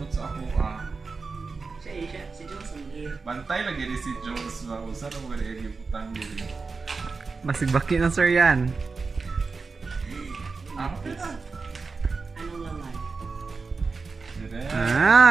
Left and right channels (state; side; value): quieter; left; 4.4 dB